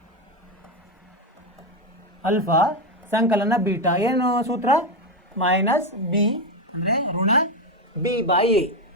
ಅಲ್ಫಾ ಸಂಕಲನ ಬೀಟಾ. ಏನು ಸೂತ್ರ, ಮೈನಸ್ ಬಿ ಅಂದರೆ ಋಣ ಬಿ ಬೈ ಎ.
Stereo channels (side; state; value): both; normal; correlation 0.11